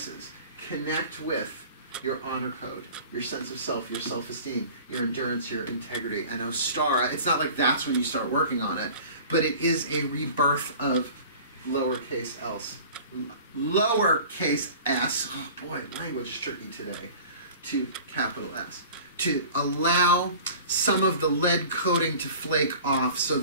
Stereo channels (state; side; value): inverted; both; correlation -0.43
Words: connect with your honor code, your sense of self, your self-esteem, your endurance, your integrity. And Ostara, it's not like that's when you start working on it, but it is a rebirth of lowercase else. Lowercase s, oh boy, language is tricky today, to capital S. To allow some of the lead coating to flake off so